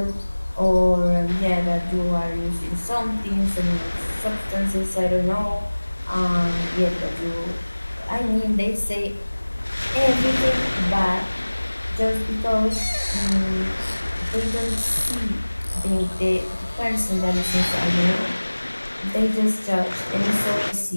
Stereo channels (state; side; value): inverted; both; correlation -1.00